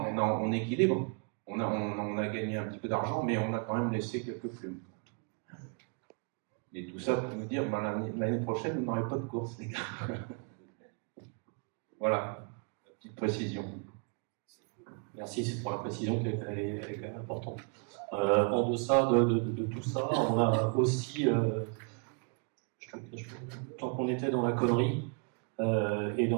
on équilibre. On a gagné un petit peu d'argent, mais on a quand même laissé quelques plumes. Et tout ça pour nous dire, l'année prochaine, vous n'aurez pas de course, les gars. Voilà, la petite précision. Merci pour la précision qui est quand même importante. En deçà de tout ça, on a aussi, tant qu'on était dans la connerie et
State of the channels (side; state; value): left; quieter; 38.3 dB